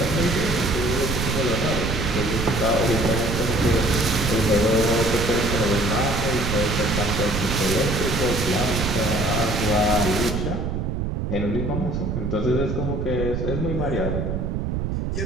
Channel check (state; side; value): noise; right; rumble, 1 dB below the sound